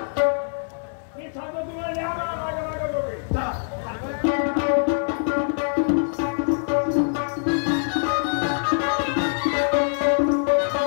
मी सांगतो तुम्हाला द्या माझ्या माझ्या दोघे.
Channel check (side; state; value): right; silent; 63 dB below the other